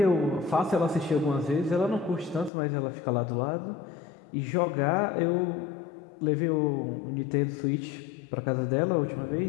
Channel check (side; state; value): right; drops out; at 2.5 s